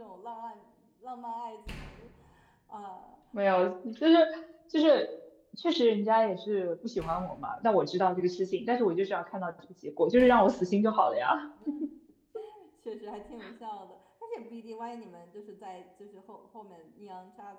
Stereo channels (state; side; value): identical; both; correlation 1.00